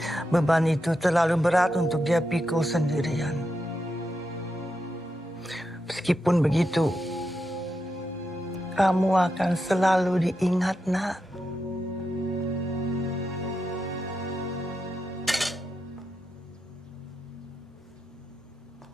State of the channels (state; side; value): normal; both; correlation 0.86